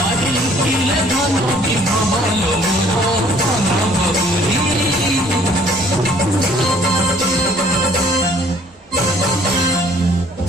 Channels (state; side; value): normal; both; correlation 0.58